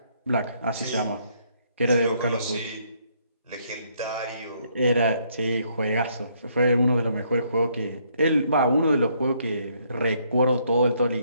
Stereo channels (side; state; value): both; inverted; correlation -0.70